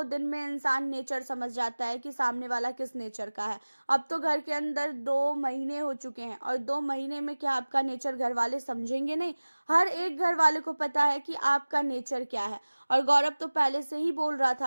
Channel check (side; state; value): both; inverted; correlation -1.00